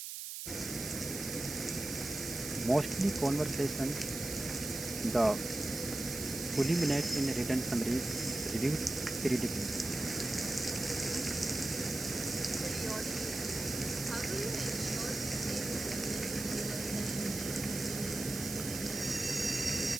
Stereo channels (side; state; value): right; noise; hiss, 7 dB below the sound